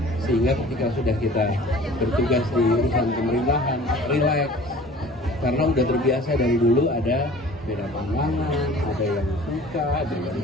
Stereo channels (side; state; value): both; normal; correlation 0.46